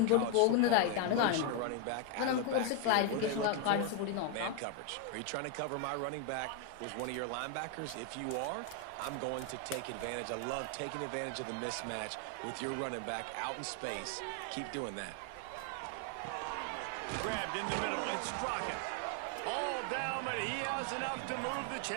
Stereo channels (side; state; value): both; different; correlation 0.01